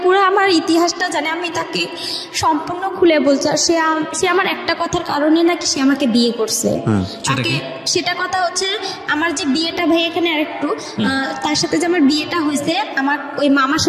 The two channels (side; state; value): both; identical; correlation 1.00